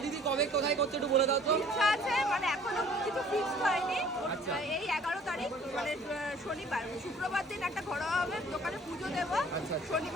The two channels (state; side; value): normal; both; correlation 0.53